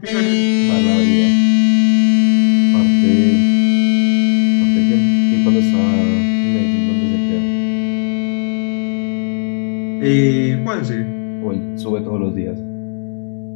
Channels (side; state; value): right; silent; digital silence